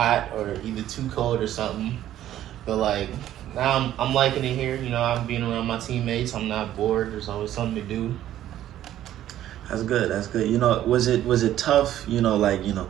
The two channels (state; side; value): quieter; left; 12.4 dB